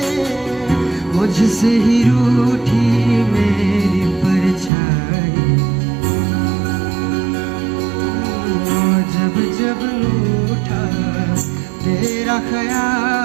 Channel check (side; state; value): left; drops out; at 4.7 s